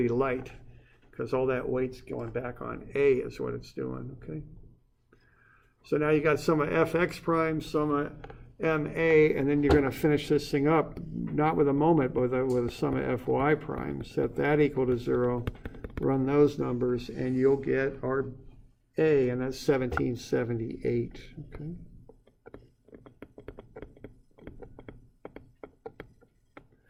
light because all that weight's going back on A is what it's doing, okay? So now you got sum of fx prime, sum of ma, and then you're going to finish this thing up, not with a moment, but with a sum of fy prime. Set that equal to 0, run those numbers, and you'll get our A, and that's 1778, okay?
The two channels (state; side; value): identical; both; correlation 1.00